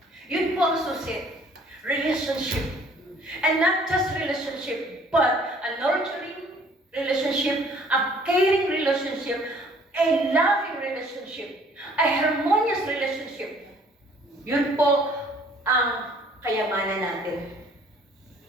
Yun po ang susi. Relationship. And not just relationship, but a nurturing relationship, a caring relationship, a loving relationship, a harmonious relationship. Yun po ang kayamanan natin.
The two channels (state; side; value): normal; both; correlation 0.57